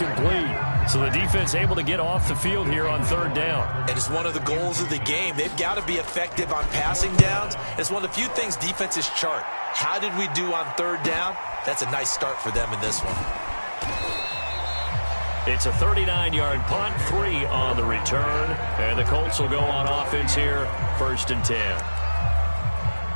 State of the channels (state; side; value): inverted; both; correlation -1.00